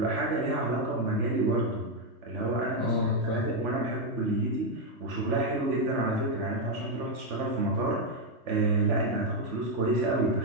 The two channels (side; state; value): left; late; 3.1 ms